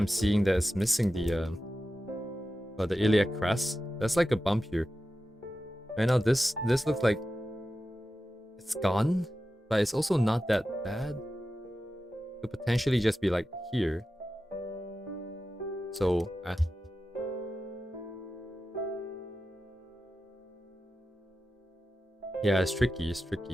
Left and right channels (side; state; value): both; normal; correlation 0.92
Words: seeing that it's missing the iliac crest. That's like a bump here. Right now this looks like it's gone, but it's also not that bad. It could potentially just be like here. So yeah, it's tricky, it's